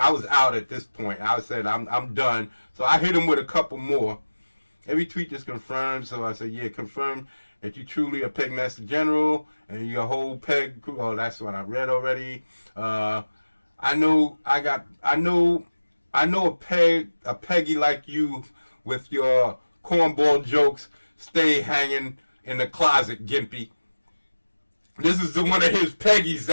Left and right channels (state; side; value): inverted; both; correlation -1.00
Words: out at this point. I said I'm done. So I hit him with a couple more. Every tweet just confirmed. So I said, yeah, confirm that you truly a Pegmaster General and your whole peg crew. Oh, that's what I read already. I know a Peggy like you with your cornball jokes stay hanging in the closet, Gimpy. This is one of his Peggies